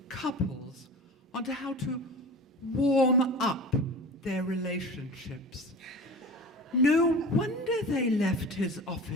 couples on how to warm up their relationships. No wonder they left his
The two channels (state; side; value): normal; both; correlation 0.35